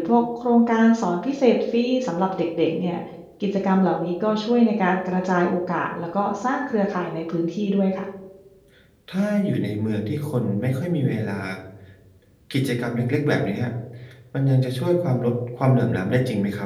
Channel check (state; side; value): identical; both; correlation 1.00